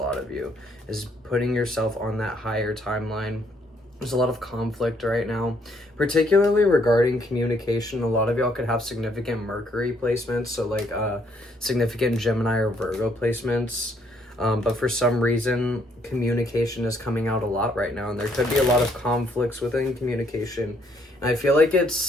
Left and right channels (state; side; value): normal; both; correlation 0.69